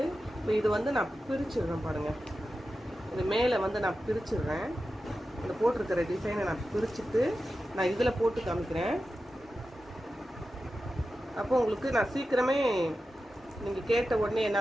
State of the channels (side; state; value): both; normal; correlation 0.92